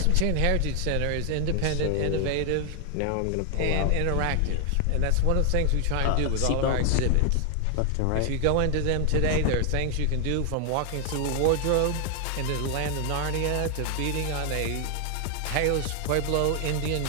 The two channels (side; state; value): both; different; correlation 0.00